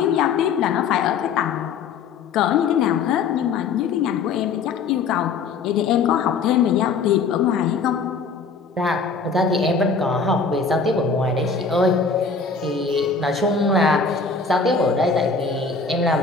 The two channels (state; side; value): quieter; right; 5.0 dB